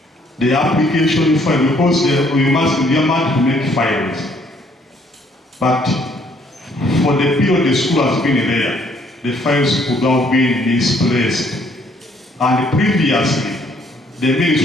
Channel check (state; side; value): normal; both; correlation 0.65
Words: the application file, because you must to make files. But for the period the school has been there, the files could have been misplaced. And previously, the